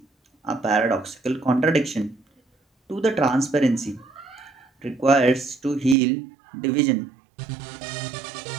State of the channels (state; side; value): drops out; left; at 6.0 s